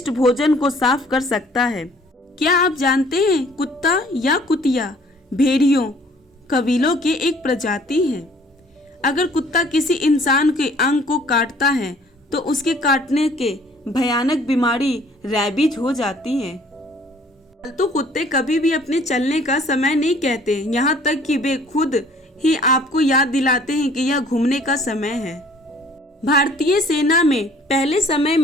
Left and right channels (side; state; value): both; normal; correlation 0.56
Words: भोजन को साफ कर सकता है। क्या आप जानते हैं कुत्ता या कुतिया भेड़ियों कबीलों के एक प्रजाति है। अगर कुत्ता किसी इंसान के अंग को काटता है तो उसके काटने के भयानक बीमारी रैबीज हो जाती है। पालतू कुत्ते कभी भी अपने चलने का समय नहीं कहते, यहाँ तक कि वे खुद ही आपको याद दिलाते हैं कि यह घूमने का समय है। भारतीय सेना में पहले समय